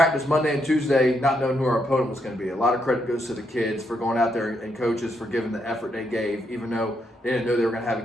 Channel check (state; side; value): normal; both; correlation 0.78